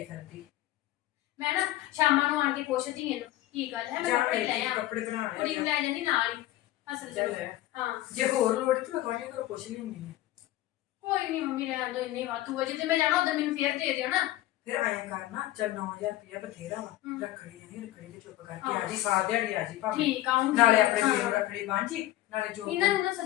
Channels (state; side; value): quieter; right; 15.4 dB